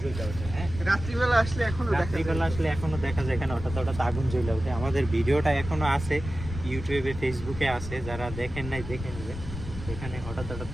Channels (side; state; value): left; noise; rumble, 9 dB below the sound